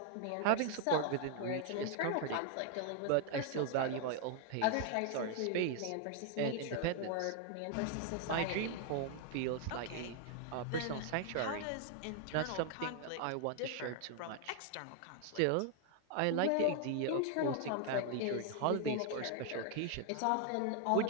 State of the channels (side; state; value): both; different; correlation 0.00